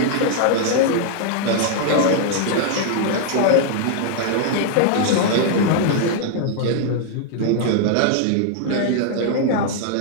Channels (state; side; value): different; both; correlation 0.00